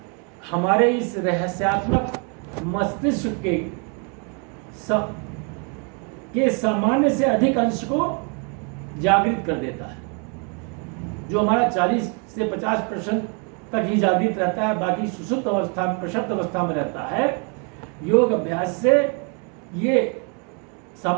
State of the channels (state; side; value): quieter; left; 36.9 dB